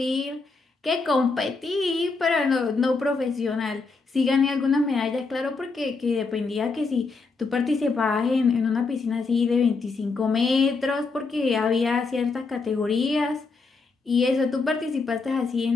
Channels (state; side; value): quieter; right; 4.2 dB